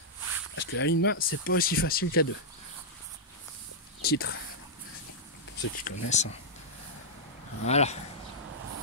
Parce que la ligne main, c'est pas aussi facile qu'à deux. Titre. ceux qui connaissent. Voilà.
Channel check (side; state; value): both; normal; correlation -0.08